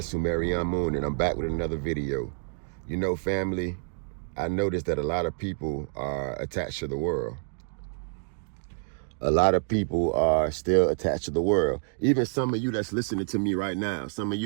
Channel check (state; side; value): silent; left; 59 dB below the other